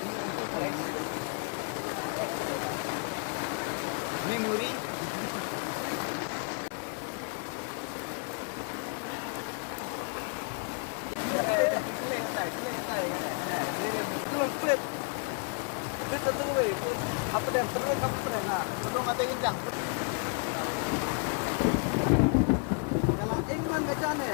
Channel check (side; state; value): right; quieter; 37.8 dB